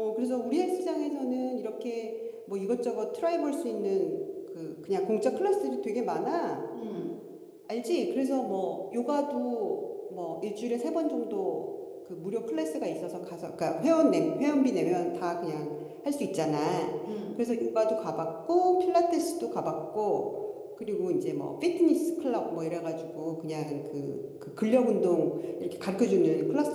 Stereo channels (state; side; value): identical; both; correlation 1.00